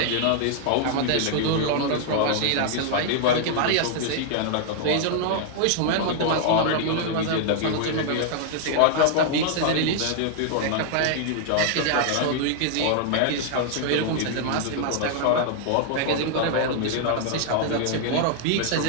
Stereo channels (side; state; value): both; different; correlation 0.00